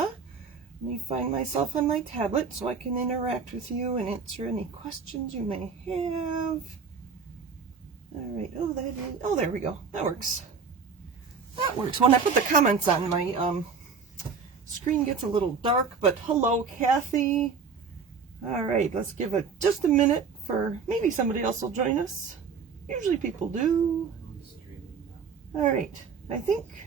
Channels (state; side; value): quieter; left; 5.6 dB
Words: Let me find myself on my tablet so I can interact with you and answer any questions you may have. Alright, oh there we go. That works. That works. When I put the comments on, my screen gets a little dark, but hello Kathy. Alright, let's give it just a minute for maybe somebody else will join us. Usually people do. Alright, I think